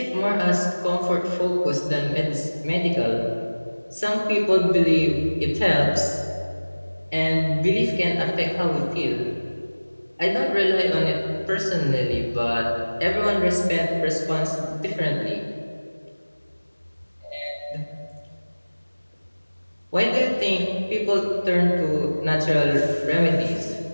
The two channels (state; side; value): inverted; both; correlation -1.00